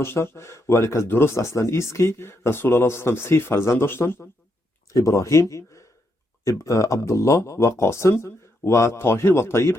ولی که درست اصلا ایست که رسول الله صلی الله علیه و 3 فرزند داشتن، ابراهیم، عبدالله و قاسم، و طاهر و طیب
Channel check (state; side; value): normal; both; correlation 0.79